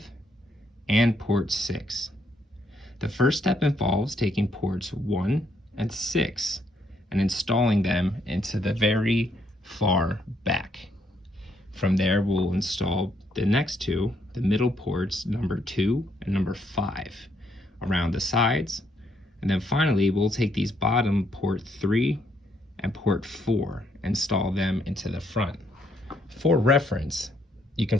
and port 6. The first step involves taking ports 1 and 6 and installing them into the very far back. From there, we'll install the next two, the middle ports number 2 and number 5, around the sides. And then finally, we'll take these bottom port 3 and port 4, install them into the front. For reference, you can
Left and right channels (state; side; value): normal; both; correlation 0.72